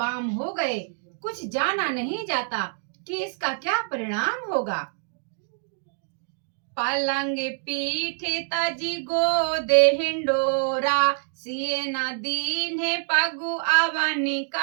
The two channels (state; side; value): silent; left; 60 dB below the other